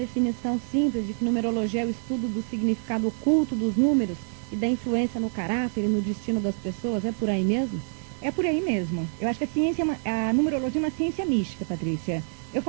simples de que numerologia é o estudo do significado oculto dos números e da influência no caráter e no destino das pessoas, é por aí mesmo? É por aí mesmo. Eu acho que a numerologia é uma ciência mística, Patrícia. Eu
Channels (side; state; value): left; silent; digital silence